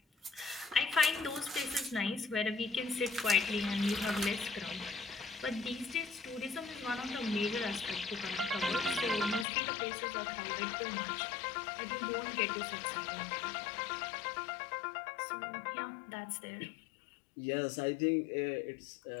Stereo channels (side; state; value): right; drops out; at 9.5 s